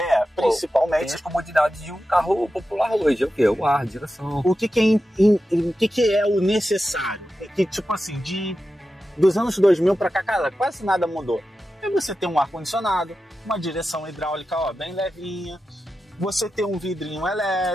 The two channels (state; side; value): normal; both; correlation 0.91